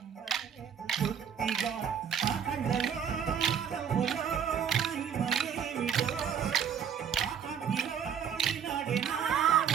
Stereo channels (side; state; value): left; quieter; 7.9 dB